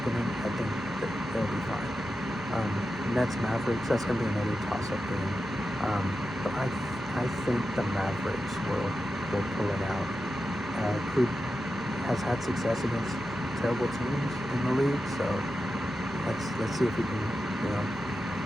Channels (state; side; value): normal; both; correlation 0.90